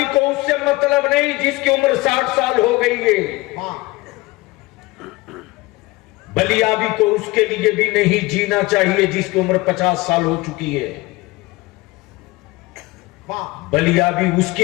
को उससे मतलब नहीं जिसकी उम्र 60 साल हो गई है। वाह, बलियाबी को उसके लिए भी नहीं जीना चाहिए जिसकी उम्र 50 साल हो चुकी है। वाह बलिया भी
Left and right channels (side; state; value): right; quieter; 21.5 dB